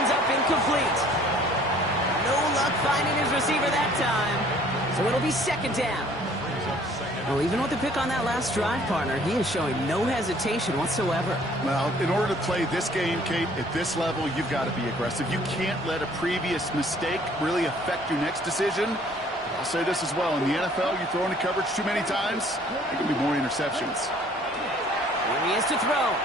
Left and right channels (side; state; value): both; normal; correlation 0.56